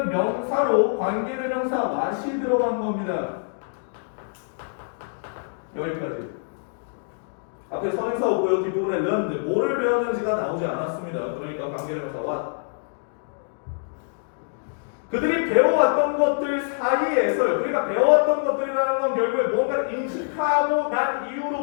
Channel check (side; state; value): right; silent; digital silence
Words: 명사로 관계대명사 what이 들어간 겁니다. 여기까지. 앞에 선행사 오고요. 뒷부분에 learned, 뭐를 배웠는지가 나오지 않았습니다. 그러니까 관계대명사 what. 그들이 배워왔던 것들 사이에서, 그러니까 배워왔던 것들이라는 건 결국에 뭔가를 인식하고 난